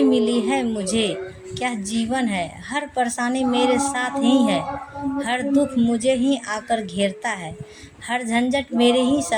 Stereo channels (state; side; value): identical; both; correlation 1.00